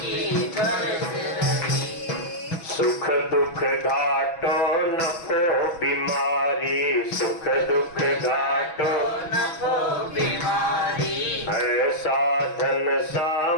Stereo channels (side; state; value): right; late; 6.2 ms